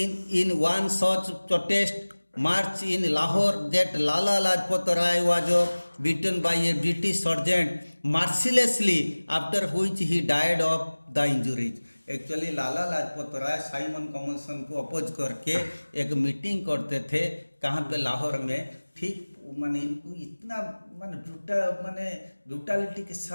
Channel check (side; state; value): both; inverted; correlation -1.00